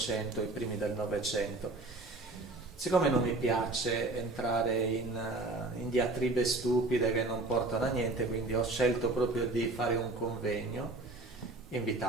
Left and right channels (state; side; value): quieter; left; 3.0 dB